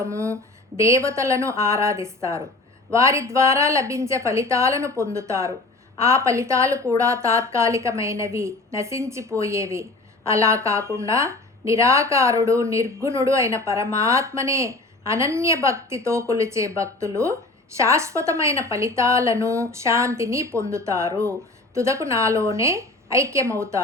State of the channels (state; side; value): quieter; right; 3.0 dB